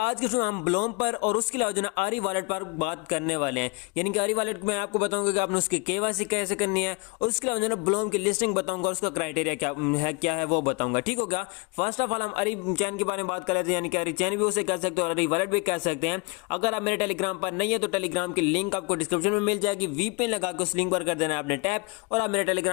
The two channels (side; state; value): right; quieter; 29.9 dB